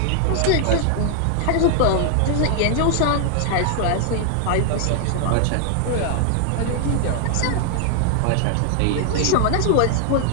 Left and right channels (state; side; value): different; both; correlation 0.00